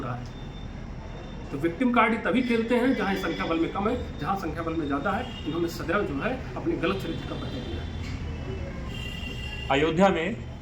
रहा है। तो विक्टिम कार्ड ही तभी खेलते हैं जहाँ संख्या बल में कम है, जहाँ संख्या बल में ज़्यादा है इन्होंने सदैव जो है अपने गलत चरित्र का परिचय दिया है। अयोध्या में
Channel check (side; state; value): both; identical; correlation 1.00